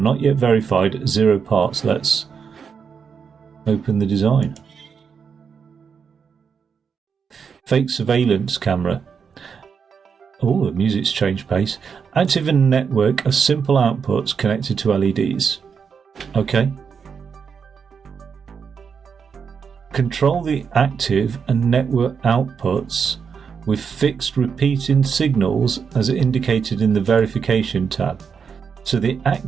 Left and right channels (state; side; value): quieter; left; 6.3 dB